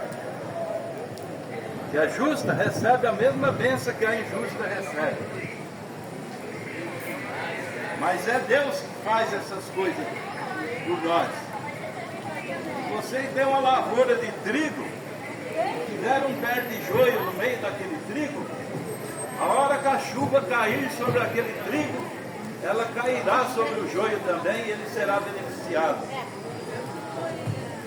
que é justa recebe a mesma bênção que a injusta recebe. Mas é Deus que faz essas coisas por nós. Se você tem uma lavoura de trigo, tiver um pé de joio no meio daquele trigo, a hora que a chuva cair sobre aquele trigo, ela cairá sobre o joio também e ele será beneficiado.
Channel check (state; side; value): identical; both; correlation 1.00